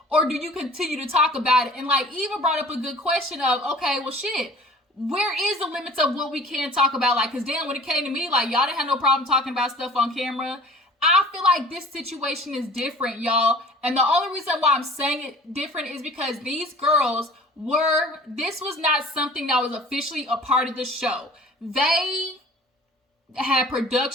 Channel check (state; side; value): normal; both; correlation 0.46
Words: Or do you continue to talk about it? And like, Eva brought up a good question of, okay, well shit, where is the limits of what we can talk about? Like, cause damn, when it came to me, like y'all didn't have no problem talking about stuff on camera. I feel like this situation is different, y'all. And the only reason why I'm saying it different is because these girls this was not something that was officially a part of the show. They had